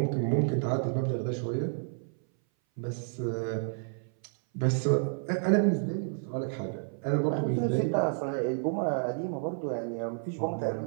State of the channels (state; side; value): silent; left; 57 dB below the other